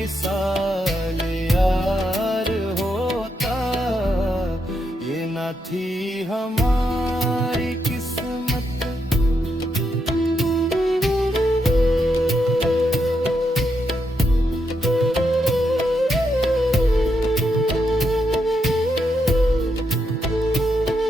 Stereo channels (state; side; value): normal; both; correlation 0.81